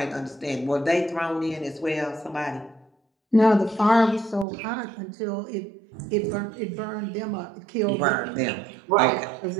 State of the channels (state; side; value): drops out; left; at 4.5 s